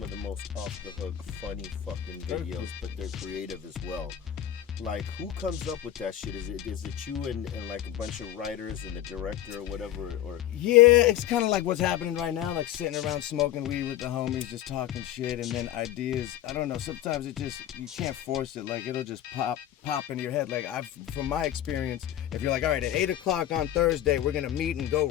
of the most off the hook, funny fucking videos, but they're creative as well. Like, who comes up with that shit? Is it you and like a bunch of writers and the director or whatever? Or Yeah, it's kind of like what's happening right now, like sitting around smoking weed with the homies, just talking shit, and then ideas. I don't know. Sometimes it just you can't force it. Like it'll just pop into your head. Like from my experience, if you're like, all right, at 8 o'clock on Thursday, we're gonna meet and go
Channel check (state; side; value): quieter; right; 12.0 dB